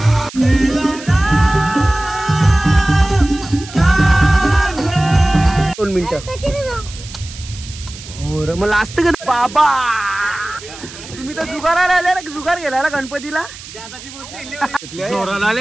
मला असतं का बाबा तुम्ही तर जुगाराला आले ना जुगार गेला गणपतीला जोराला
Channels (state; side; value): noise; right; hiss, 15 dB below the sound